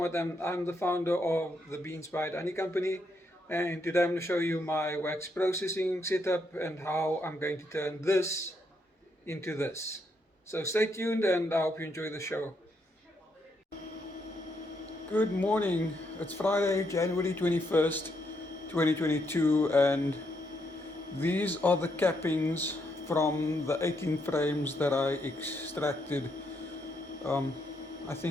and I'm the founder of the Beeswax Honey Company. And today I'm going to show you my wax processing setup and how I'm going to turn this into this. So stay tuned and I hope you enjoy the show. Good morning. It's Friday, January 21st, 2022, and these are the cappings from the 18 frames that I extracted, um, I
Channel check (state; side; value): normal; both; correlation 0.77